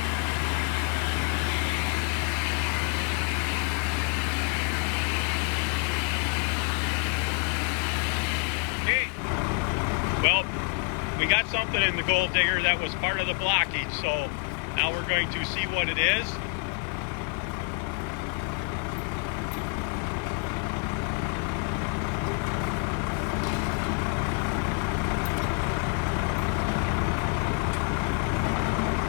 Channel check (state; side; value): quieter; right; 36.7 dB